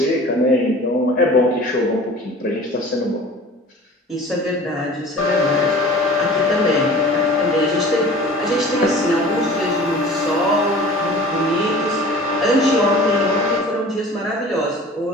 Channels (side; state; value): both; normal; correlation 0.43